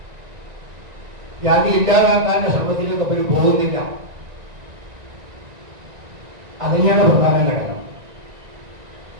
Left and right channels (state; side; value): late; left; 1.9 ms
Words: ജാതി ഇല്ലാതാക്കാനുള്ള ശ്രമത്തിലേക്ക് അവർ പോകുന്നില്ല. അതുതന്നെയാണ് പ്രധാന ഘടകം.